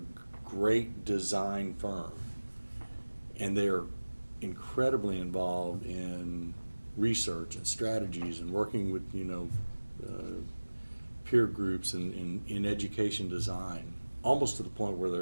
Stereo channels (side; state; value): both; inverted; correlation -1.00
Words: great design firm, and they're incredibly involved in research and strategies and working with peer groups and in education design, almost to the point where